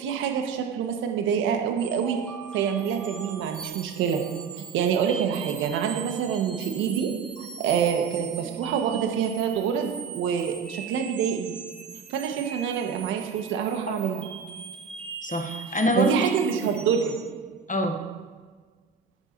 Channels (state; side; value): quieter; left; 6.1 dB